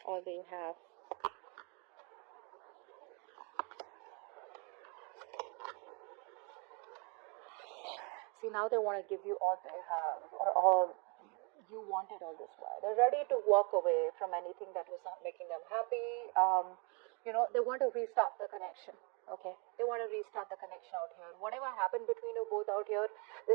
all they have. See, now they want to give you all they have, or all you wanted all this while. They're ready to walk away from anything that was not making them happy. They want to restart the connection. Okay, they want to restart the connection out here. Whatever happened between you both out here,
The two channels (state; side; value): quieter; left; 33.6 dB